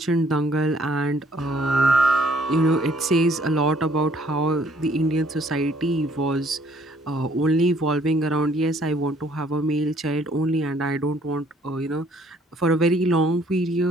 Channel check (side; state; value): both; normal; correlation 0.62